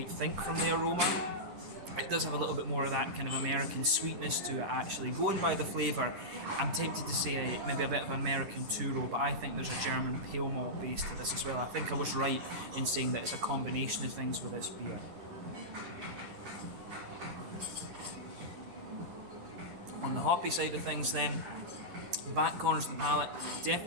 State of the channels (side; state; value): left; late; 10 ms